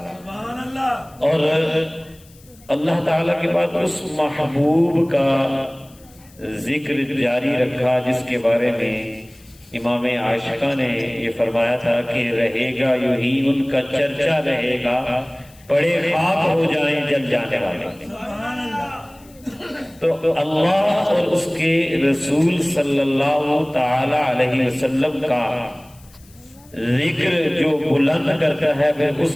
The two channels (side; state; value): left; noise; hiss, 27 dB below the sound